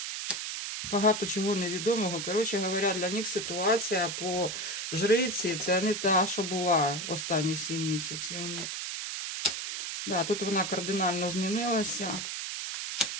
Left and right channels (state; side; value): noise; right; hiss, 4 dB below the sound